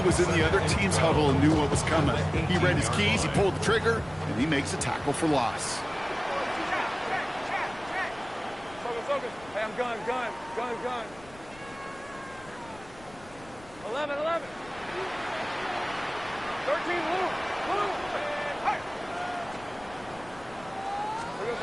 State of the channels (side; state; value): left; noise; rumble, 21 dB below the sound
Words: in the other team's huddle and knew what was coming. He read his keys, he pulled the trigger, and he makes a tackle for loss. Focus. Hey, I'm gun. 11. 13, Luke. Hey.